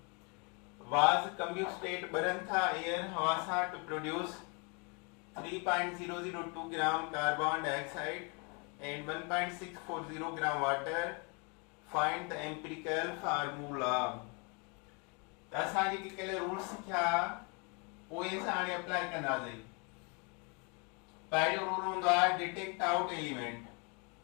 was combusted burn tha air हवा सां to produce 3.002 gram carbon dioxide and 1.640 gram water. Find the empirical formula. त असां जेके कल्ह रूल्स सिखिया उहे असां हाणे अप्लाई कंदासीं। पहिरियों रूल हूंदो आहे detect out element.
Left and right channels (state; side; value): quieter; right; 33.2 dB